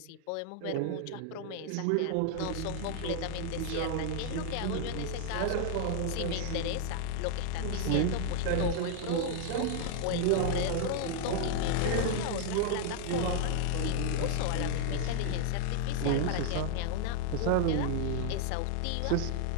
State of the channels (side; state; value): both; different; correlation 0.00